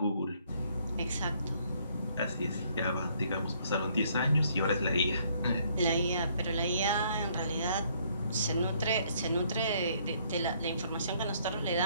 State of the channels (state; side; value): inverted; both; correlation -0.65